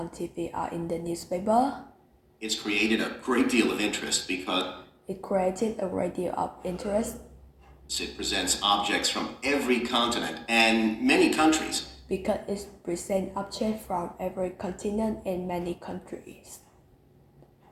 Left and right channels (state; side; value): identical; both; correlation 1.00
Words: TV or in the newspaper. It's created a great deal of interest because It created a great deal of interest it presents objects from every continent and many countries. because it presents objects from every continent and many countries,